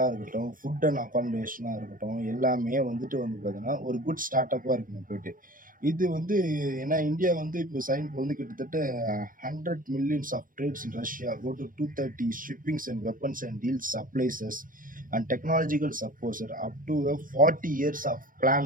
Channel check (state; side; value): late; left; 0.40 ms